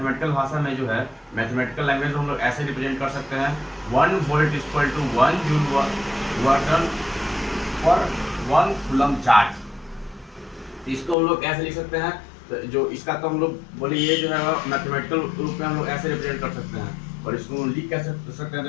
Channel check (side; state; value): right; drops out; at 11.2 s